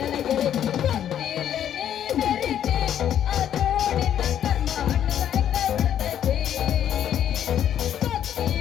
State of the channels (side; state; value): right; quieter; 10.1 dB